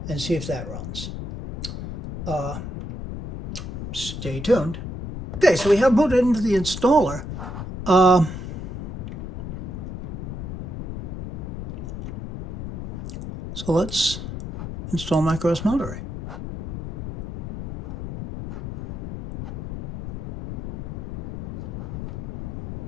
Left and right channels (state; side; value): noise; left; rumble, 6 dB below the sound